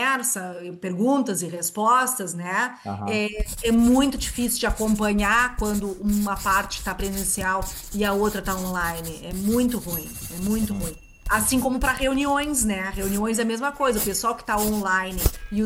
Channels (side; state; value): both; identical; correlation 1.00